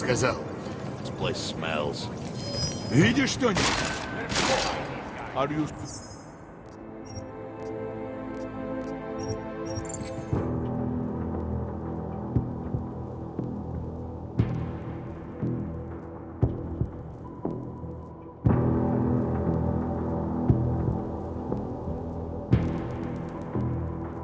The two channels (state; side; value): identical; both; correlation 1.00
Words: This place smells. Видишь что-нибудь? Are you...